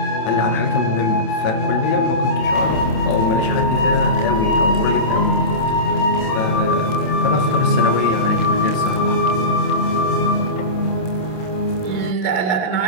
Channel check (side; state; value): right; late; 27 ms